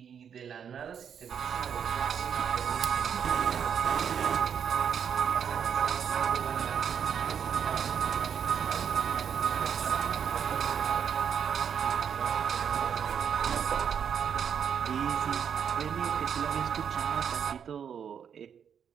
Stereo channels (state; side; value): quieter; left; 7.8 dB